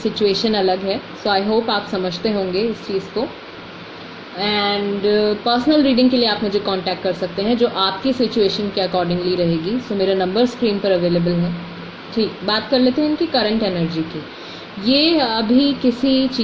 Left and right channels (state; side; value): identical; both; correlation 1.00